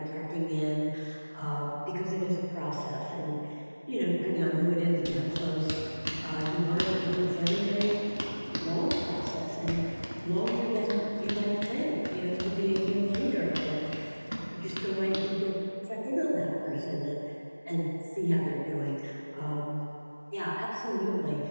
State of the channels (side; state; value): both; inverted; correlation -1.00